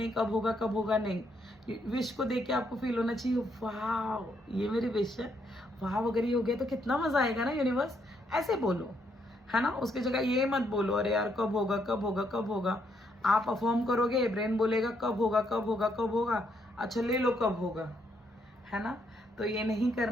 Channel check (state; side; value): normal; both; correlation 0.74